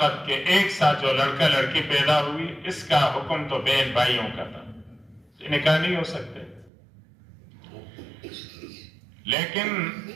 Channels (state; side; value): drops out; left; at 6.7 s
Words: کہ ایک ساتھ جو لڑکا لڑکی پیدا ہوئی، اس کا حکم تو بہن بھائیوں کا تھا، نکاح نہیں ہو سکتے۔ لیکن